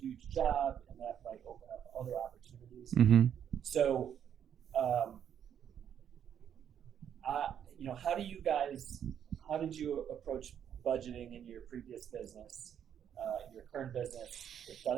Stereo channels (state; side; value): quieter; left; 9.0 dB